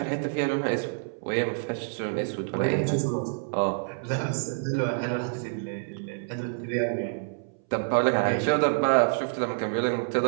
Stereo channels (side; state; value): left; silent; 60 dB below the other